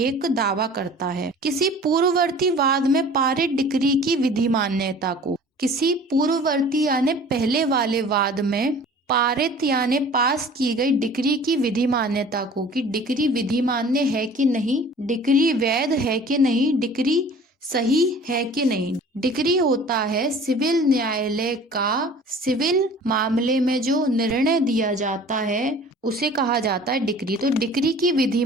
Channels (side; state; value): both; normal; correlation 0.46